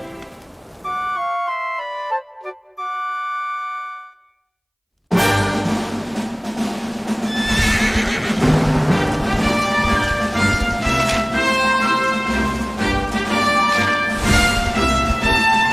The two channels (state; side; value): identical; both; correlation 1.00